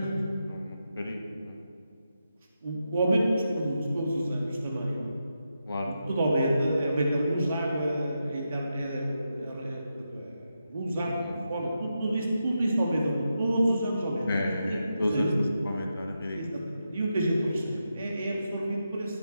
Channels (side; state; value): both; inverted; correlation -0.86